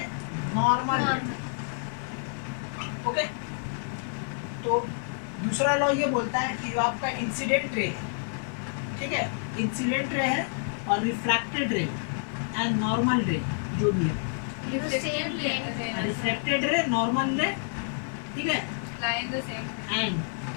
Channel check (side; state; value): right; silent; 59 dB below the other